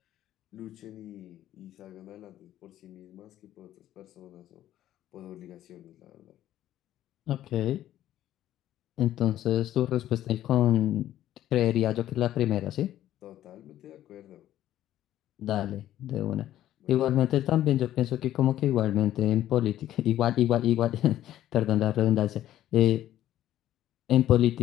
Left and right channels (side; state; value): right; quieter; 12.8 dB